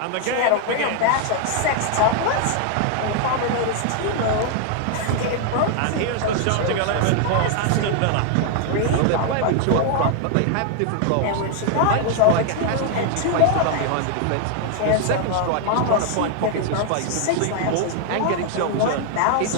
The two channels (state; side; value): different; both; correlation 0.00